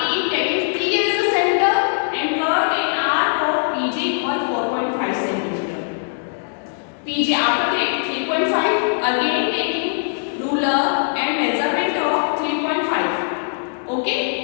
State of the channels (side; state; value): right; silent; digital silence